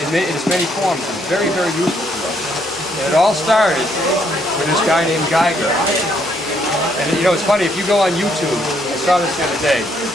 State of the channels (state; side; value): normal; both; correlation 0.71